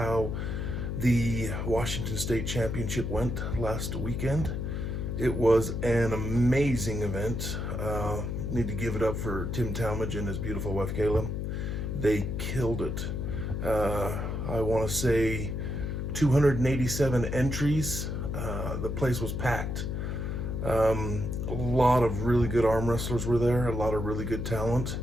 the Washington State Championship went last weekend. It was an amazing event. Need to give it up for Tim Talmadge and his beautiful wife Kayla. They killed it. I want to say 287 entries. The place was packed. A lot of really good arm wrestlers were there, a lot of really good talent.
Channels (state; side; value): noise; left; hum, 3 dB below the sound